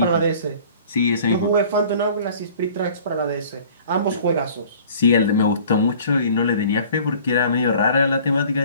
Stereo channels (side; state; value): both; inverted; correlation -0.49